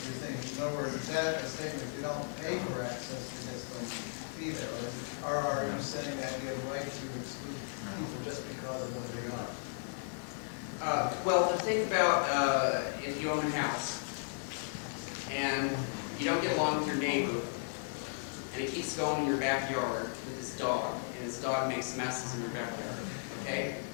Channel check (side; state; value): right; silent; digital silence